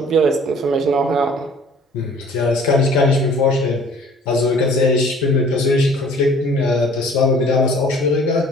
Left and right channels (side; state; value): both; normal; correlation 0.52